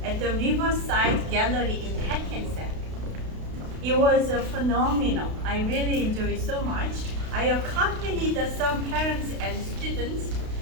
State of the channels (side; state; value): left; late; 32 ms